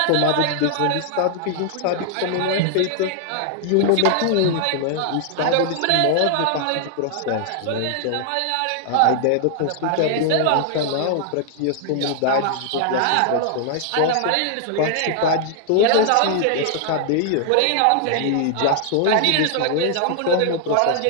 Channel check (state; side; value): different; both; correlation 0.00